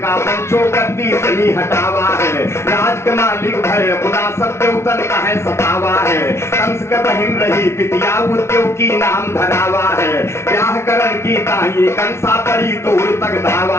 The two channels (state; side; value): late; right; 0.13 ms